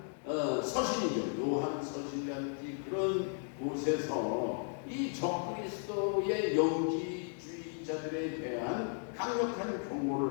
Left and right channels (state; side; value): silent; right; 54 dB below the other